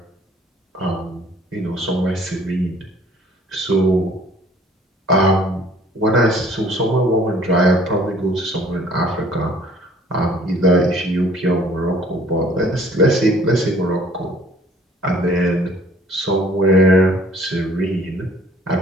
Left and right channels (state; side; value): normal; both; correlation 0.56